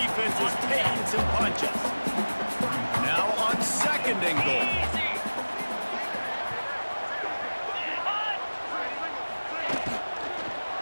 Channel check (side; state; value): both; inverted; correlation -1.00